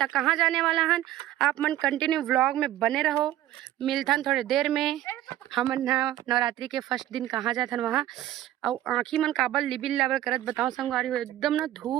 कहाँ जाने वाला हन आप मन कंटिन्यू व्लॉग में बने रहो मिलथन थोड़े देर में हमन ना नवरात्रि के फर्स्ट दिन कहाँ जाथन वहाँ और आँखी मन काबल लिबिल लाबल करत बताओ संगवारी हो एकदम ना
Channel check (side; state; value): left; quieter; 13.6 dB